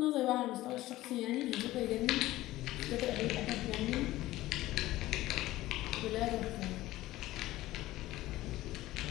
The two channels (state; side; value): quieter; right; 16.6 dB